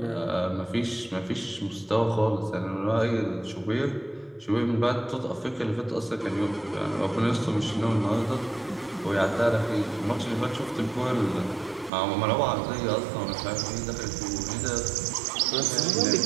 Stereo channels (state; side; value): drops out; left; at 11.9 s